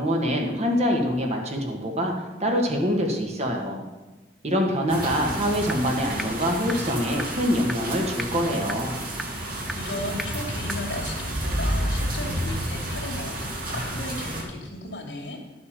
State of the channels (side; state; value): both; normal; correlation 0.50